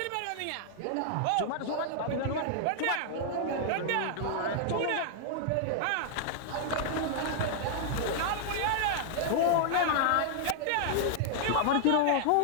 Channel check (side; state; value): both; different; correlation -0.01